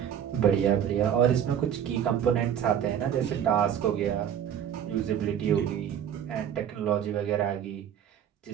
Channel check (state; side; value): quieter; left; 9.2 dB